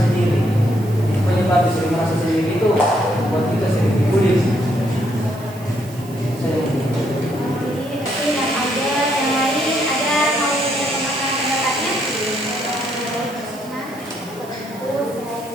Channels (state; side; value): noise; right; hiss, 22 dB below the sound